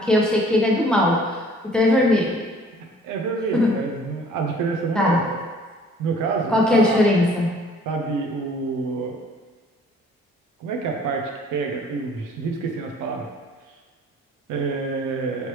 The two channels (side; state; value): both; normal; correlation 0.55